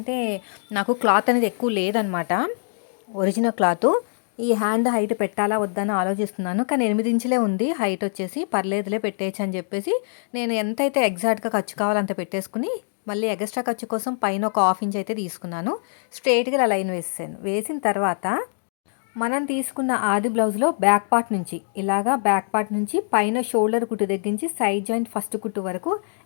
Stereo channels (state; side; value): silent; right; digital silence